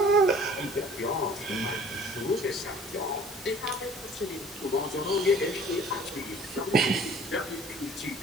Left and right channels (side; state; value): both; normal; correlation 0.50